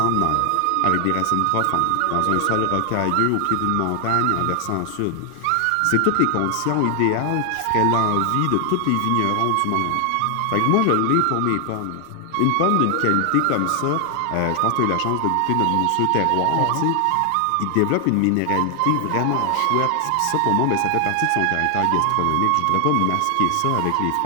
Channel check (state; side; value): different; both; correlation 0.00